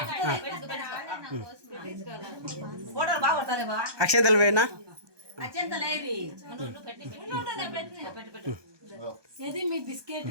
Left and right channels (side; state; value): left; late; 1.2 ms